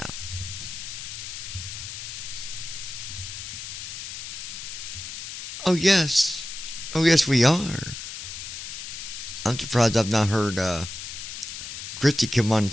Oh yes. Oh yes, we are. I'm surprised I've not heard Christy come on and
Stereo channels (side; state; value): left; noise; hiss, 8 dB below the sound